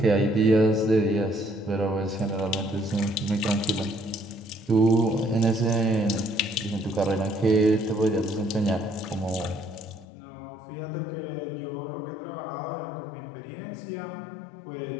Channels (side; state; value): right; drops out; at 10.1 s